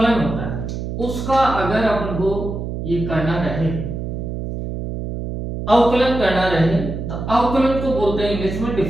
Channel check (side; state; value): right; noise; hum, 5 dB below the sound